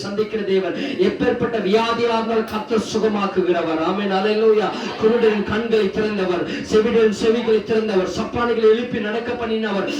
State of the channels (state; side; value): identical; both; correlation 1.00